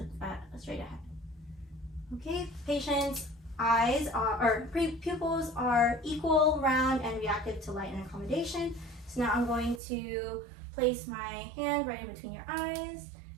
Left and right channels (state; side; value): drops out; left; at 9.8 s